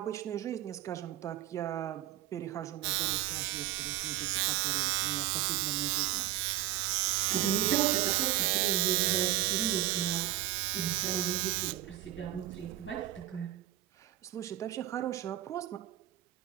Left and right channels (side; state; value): left; quieter; 14.2 dB